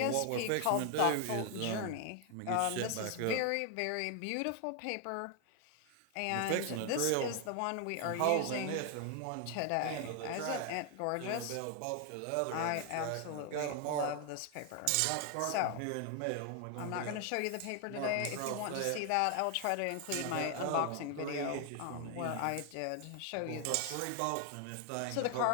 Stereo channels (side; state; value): both; different; correlation 0.00